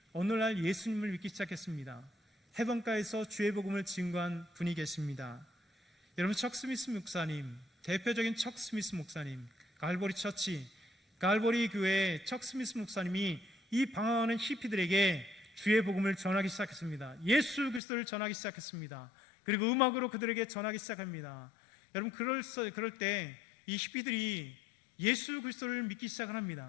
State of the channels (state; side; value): drops out; right; at 17.8 s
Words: 어느 날 예수님을 믿기 시작했습니다. 해변가에서 주의 복음을 증거한 분이 계십니다. 여러분, 척 스미스 목사님, 대표적인 척 스미스 목사님, 갈보리 처치, 갈보리 교회의 척 스미스 목사님이 이 방황하는 히피들에게 주의 복음을 전하기 시작했습니다. 예수 그리스도를 전하기 시작했습니다. 그리고 음악으로 그들에게 전하기 시작합니다. 여러분, 그럴 때 이 히피들이 예수 그리스도를 믿기 시작을